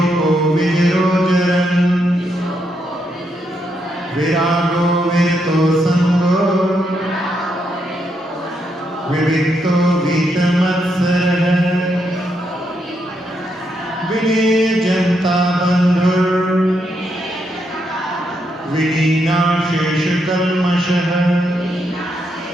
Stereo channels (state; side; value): normal; both; correlation 0.79